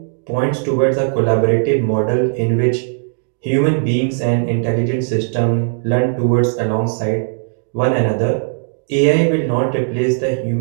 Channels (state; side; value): silent; left; digital silence